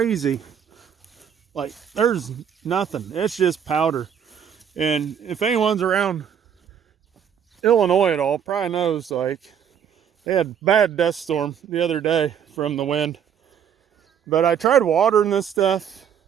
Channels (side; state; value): left; quieter; 8.3 dB